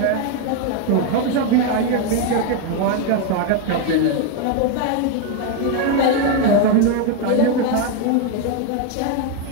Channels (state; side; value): different; both; correlation 0.01